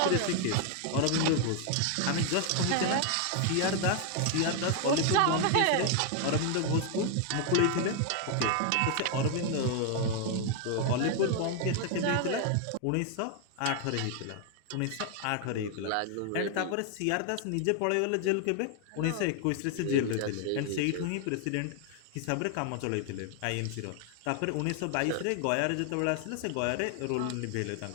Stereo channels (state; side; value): different; both; correlation 0.00